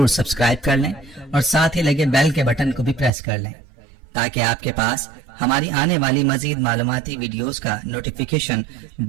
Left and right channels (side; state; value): left; drops out; at 3.1 s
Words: سبسکرائب کر لیں اور ساتھ ہی لگے بیل کے بٹن کو بھی پریس کر لیں، تاکہ آپ کے پاس ہماری آنے والی مزید معلوماتی ویڈیوز کا نوٹیفیکیشن